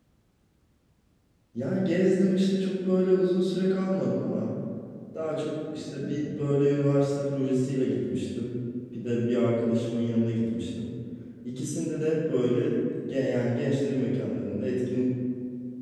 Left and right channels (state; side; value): identical; both; correlation 1.00